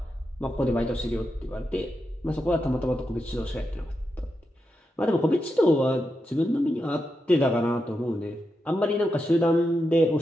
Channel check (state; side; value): normal; both; correlation 0.87